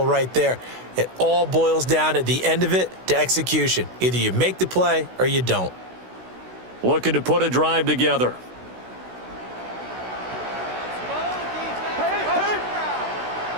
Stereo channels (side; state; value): left; late; 16 ms